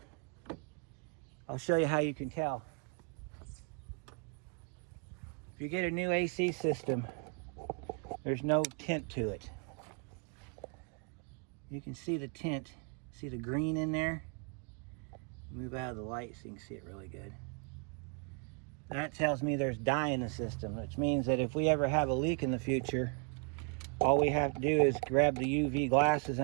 I'll show you how you can tell. If you get a new AC system, there's no tint to it. You can see the tint. See the green in there? Move out of the light so you can see it really good. That tells me there's dye in the system, which means that if we ever have a leak in the future, all we have to do is grab the UV glasses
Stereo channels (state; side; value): quieter; left; 39.0 dB